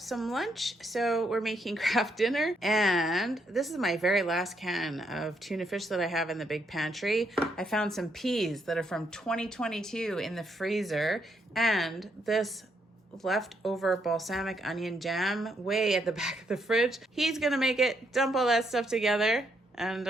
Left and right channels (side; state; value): both; normal; correlation 0.75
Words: lunch, so we're making Kraft dinner. And this is my very last can of tuna fish that I have in the big pantry. I found some peas that are from 2022 in the freezer, and this leftover balsamic onion jam way at the back of the fridge. He's going to make it, dump all that stuff together, and